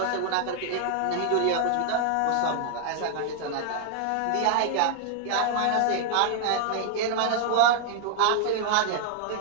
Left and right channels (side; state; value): both; different; correlation 0.00